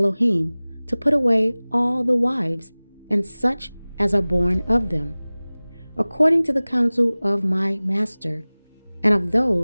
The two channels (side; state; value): both; inverted; correlation -0.99